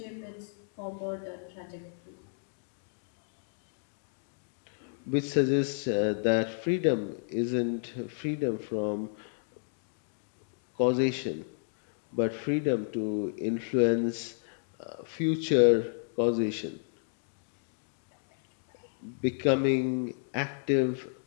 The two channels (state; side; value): silent; right; digital silence